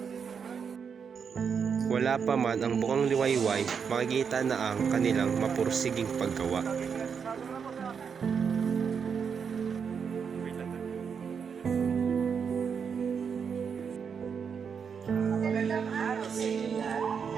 Wala pa man ang bukang liwayway, makikita na ang kanilang mapursiging paggawa. Magandang araw sa inyo lahat.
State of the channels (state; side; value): quieter; left; 6.6 dB